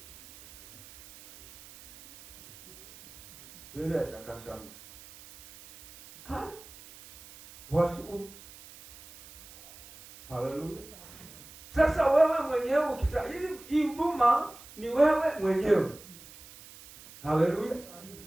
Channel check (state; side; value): noise; right; hiss, 20 dB below the sound